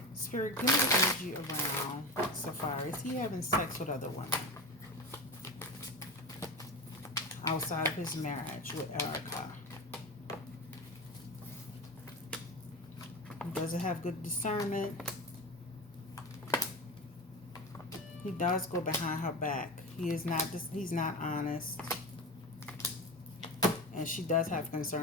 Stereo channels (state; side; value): normal; both; correlation 0.24